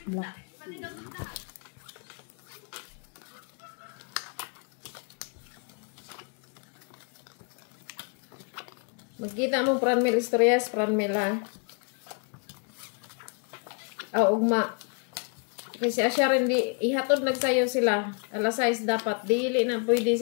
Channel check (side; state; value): right; quieter; 37.1 dB